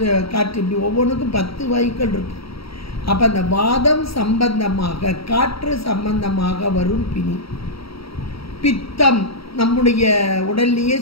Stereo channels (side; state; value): right; late; 0.75 ms